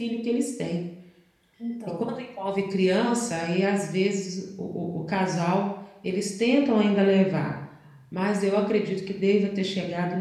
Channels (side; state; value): both; identical; correlation 1.00